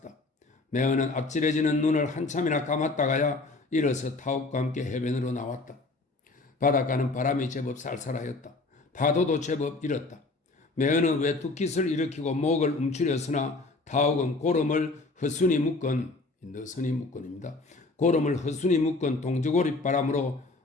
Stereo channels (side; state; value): right; quieter; 3.4 dB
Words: 매헌은 앞질해지는 눈을 한참이나 감았다가야 일어서 타옥과 함께 해변으로 나왔다. 바닷가는 바람이 제법 쌀쌀하였다. 파도도 제법 일었다. 매헌은 외투깃을 일으키고 목을 움츠렸으나 타옥은 고름을 허순이 묶은 너선이 묶은입니다. 고름을 허순이 묶은 동저고리 바람으로